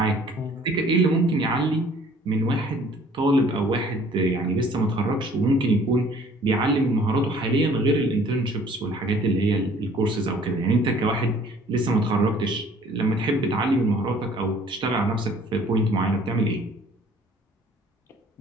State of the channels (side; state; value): both; normal; correlation 0.55